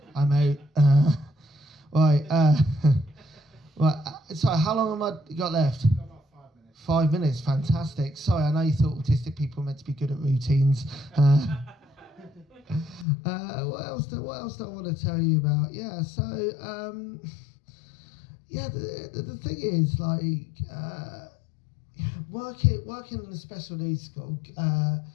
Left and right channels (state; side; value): drops out; right; at 13.1 s